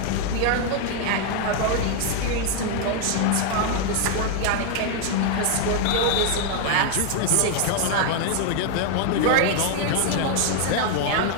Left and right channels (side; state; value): both; different; correlation 0.00